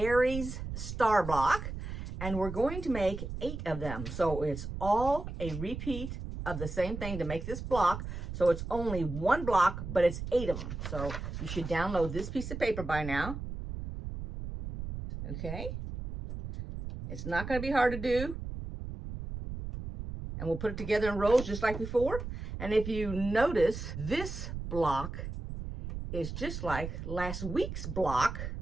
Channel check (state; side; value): noise; right; rumble, 7 dB below the sound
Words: star block, and we're going to make 8 of them. So it's all a repeat of the same thing to make this block. So it's only one block, but it's 8 of them. So you should download this piece of paper by now. Okay. It's not going to be hard to do. And we'll put it together in rows just like before. And if you notice, this block is just like last week's block.